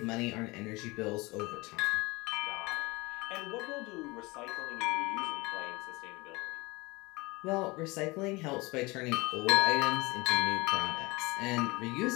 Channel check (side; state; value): right; quieter; 23.9 dB